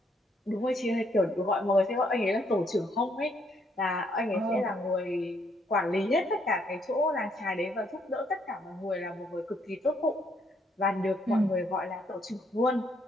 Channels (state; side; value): normal; both; correlation 0.71